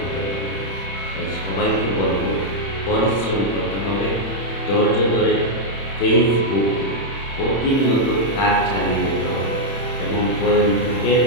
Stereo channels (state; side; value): late; right; 31 ms